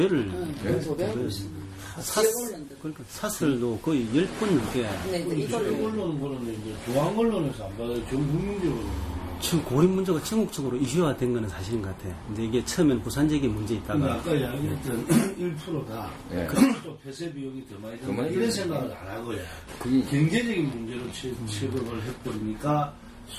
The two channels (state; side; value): identical; both; correlation 1.00